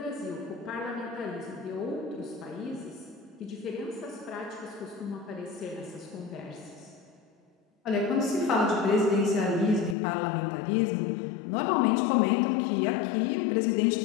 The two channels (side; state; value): right; drops out; at 10.0 s